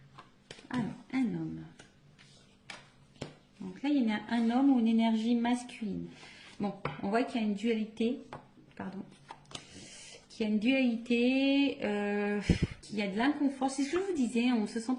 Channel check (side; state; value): both; identical; correlation 1.00